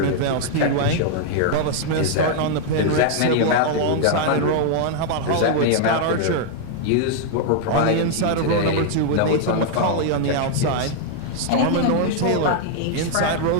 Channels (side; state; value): both; different; correlation 0.00